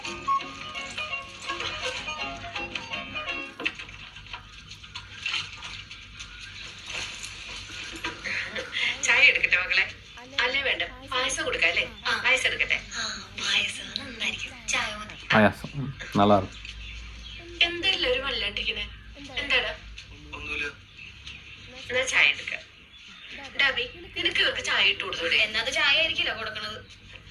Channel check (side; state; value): both; identical; correlation 1.00